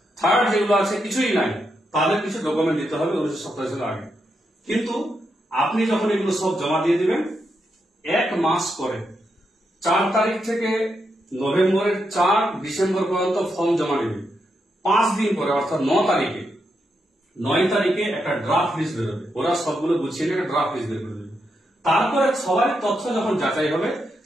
থার্ড যেগুলো আছে কিছুই নাই, তাদের কিছু ডকুমেন্ট দিতে হবে 1987 সালের আগে। কিন্তু আপনি যখন এগুলো সব জমা দিয়ে দিবেন, 1 মাস পরে 4 তারিখ থেকে নভেম্বরের 4 ডিসেম্বর পর্যন্ত ফর্ম জমা নেবে। 5 দিন পরে, অর্থাৎ 9 তারিখে একটা ড্রাফট লিস্ট বেরোবে। ওরা সবগুলো গুছিয়ে একটা ড্রাফট লিস্ট বের করে দেবে। তারপরে সবার তথ্য যখন যাচাই হবে,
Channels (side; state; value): both; normal; correlation 0.83